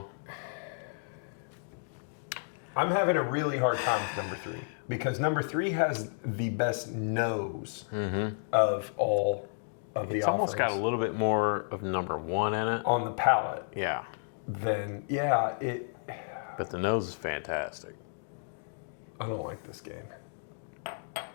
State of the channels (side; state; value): right; silent; digital silence